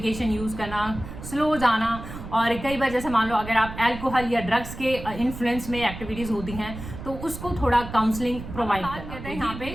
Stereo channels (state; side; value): noise; right; rumble, 11 dB below the sound